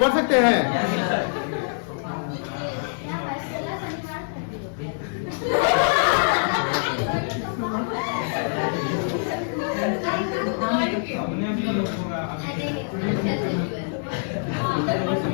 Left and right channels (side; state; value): right; silent; 62 dB below the other